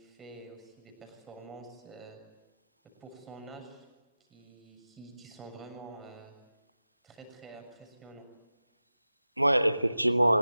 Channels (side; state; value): both; inverted; correlation -0.95